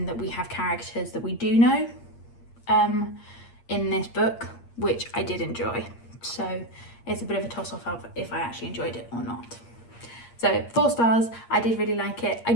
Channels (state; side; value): late; right; 8.6 ms